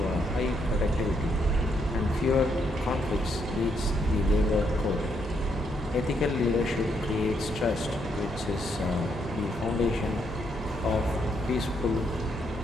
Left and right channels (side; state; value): both; normal; correlation 0.75